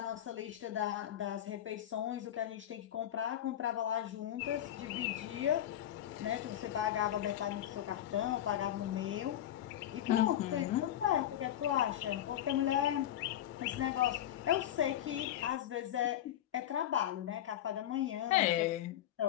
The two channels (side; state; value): right; quieter; 11.7 dB